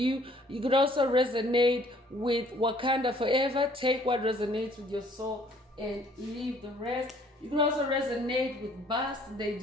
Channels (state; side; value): normal; both; correlation 0.59